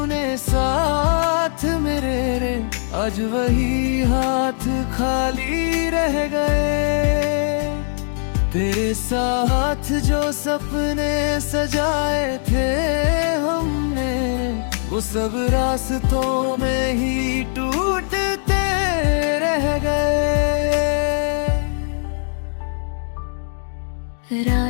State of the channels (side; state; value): right; silent; digital silence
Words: साथ मेरे रे, आज वही हाथ खाली रह गए। तेरे साथ जो सपने सजाए थे हमने, वो सब रास्तों में ही टूटते रह गए।